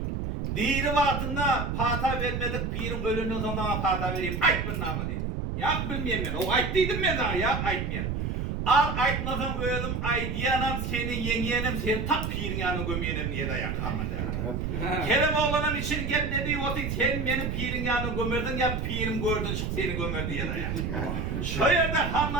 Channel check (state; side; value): noise; right; rumble, 2 dB below the sound